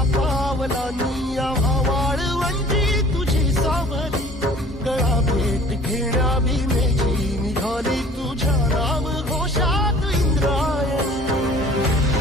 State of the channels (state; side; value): normal; both; correlation 0.49